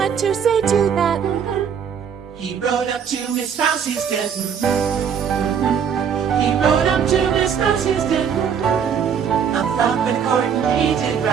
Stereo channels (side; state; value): left; quieter; 7.5 dB